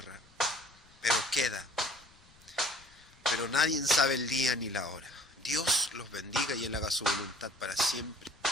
Pero queda. Pero nadie sabe el día ni la hora. Dios los bendiga y Él haga su voluntad para siempre.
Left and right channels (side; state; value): left; noise; rumble, 28 dB below the sound